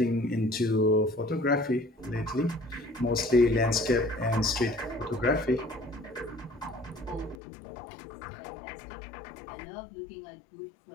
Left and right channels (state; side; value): drops out; right; at 7.4 s